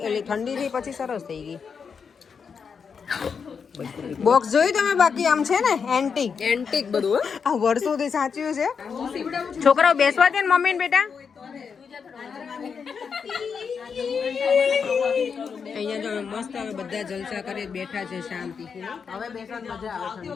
એટલે ઠંડી થઈ પછી સરસ થઈ ગઈ. બોક્સ જોયું તમે બાકી આમ છે ને એન્ટિક બધું આ વર્ષોથી સાચવ્યું છે. છોકરાઓ બેસવા દે ને મમ્મી ને બેટા. અહીંયા જો મસ્ત હવે બધા જલસા કરી બેઠા છે શાંતિથી. હવે બેસવાની મજા આવે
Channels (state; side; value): quieter; right; 6.1 dB